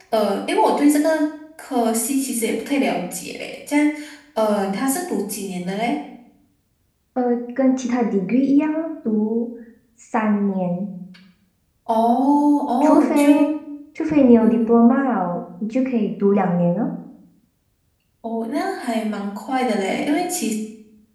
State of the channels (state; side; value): identical; both; correlation 1.00